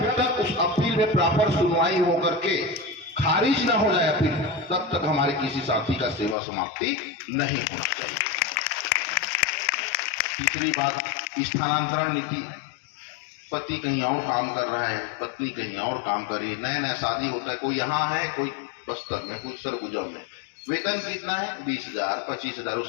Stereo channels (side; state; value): right; drops out; at 6.4 s